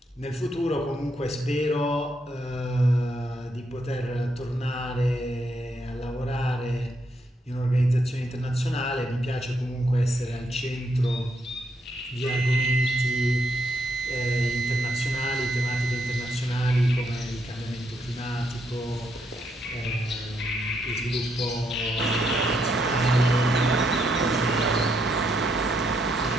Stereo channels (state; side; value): normal; both; correlation 0.77